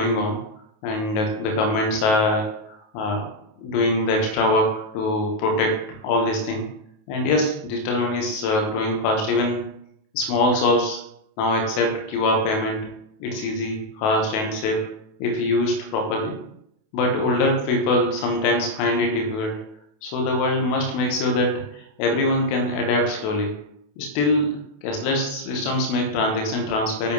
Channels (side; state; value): right; late; 28 ms